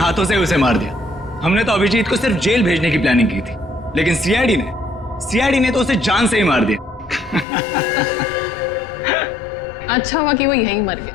से उसे मार दिया। हमने तो अभिजीत को सिर्फ जेल भेजने की प्लानिंग की थी, लेकिन सीआईडी ने तो उसे जान से ही मार दिया। अच्छा हुआ कि वो यहीं मर गया,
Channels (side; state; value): right; drops out; at 7.5 s